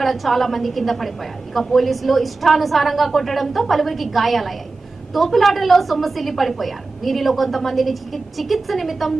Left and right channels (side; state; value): left; quieter; 3.6 dB